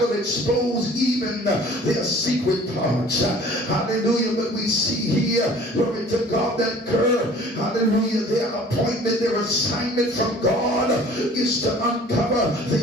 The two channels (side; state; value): both; normal; correlation 0.49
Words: will expose even their secret parts. Hallelujah. But we see here, glory to God, that hallelujah, their appointment, their assignment from God is to uncover